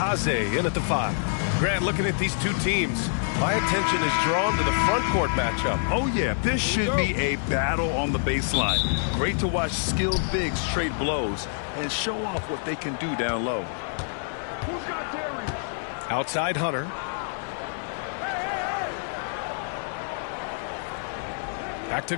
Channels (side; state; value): right; silent; 61 dB below the other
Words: in at the 5. Grant, looking at these two teams, my attention is drawn to the front court matchup. Oh, yeah, this should be a battle on the baseline. Great to watch skilled bigs trade blows and show off what they can do down low. Outside Hunter. Back to